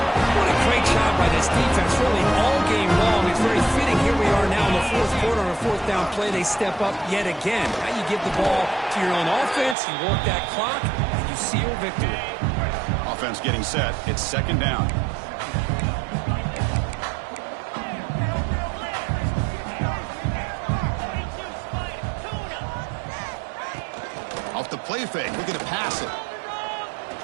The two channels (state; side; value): drops out; left; at 9.8 s